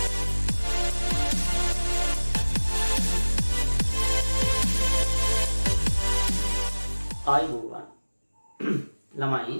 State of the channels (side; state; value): both; inverted; correlation -1.00